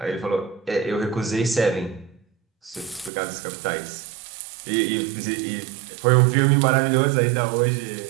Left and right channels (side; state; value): left; drops out; at 3.1 s